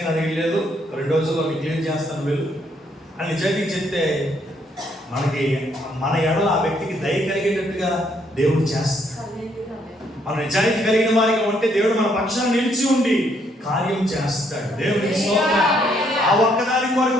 నా దగ్గర లేదు, 2 రోజుల్లో క్లియర్ చేస్తాను వెళ్ళు అని నిజాయితీ చెప్తే మనకి మన ఎడల ఆ వ్యక్తికి దయ కలిగేటట్టుగా దేవుడు చేస్తాడు. మన నిజాయితీ కలిగిన వారిగా ఉంటే దేవుడు మన పక్షాన్ని నిలిచి ఉండి కార్యం చేస్తాడు. దేవుడికి స్తోత్రం. ఆ ఒక్కదాని కొరకు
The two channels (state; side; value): normal; both; correlation 0.70